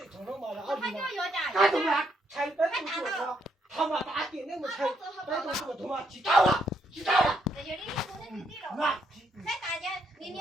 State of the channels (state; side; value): normal; both; correlation 0.75